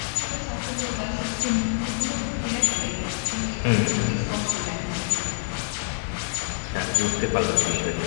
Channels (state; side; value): silent; right; 61 dB below the other